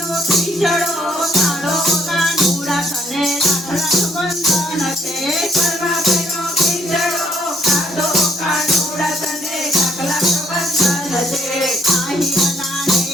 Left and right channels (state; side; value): normal; both; correlation 0.67